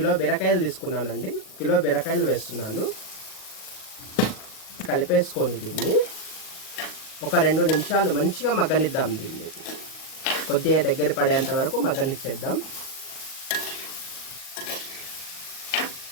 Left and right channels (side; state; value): right; late; 38 ms